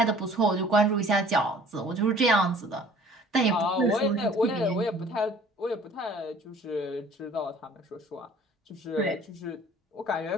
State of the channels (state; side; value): normal; both; correlation 0.52